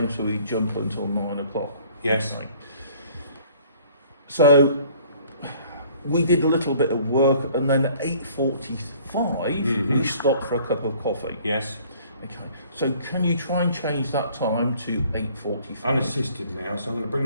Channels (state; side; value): inverted; both; correlation -0.55